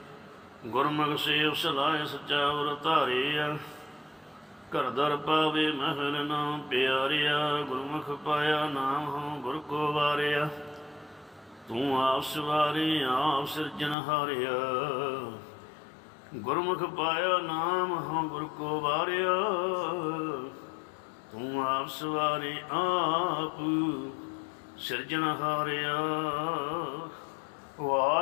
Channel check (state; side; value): drops out; right; at 14.0 s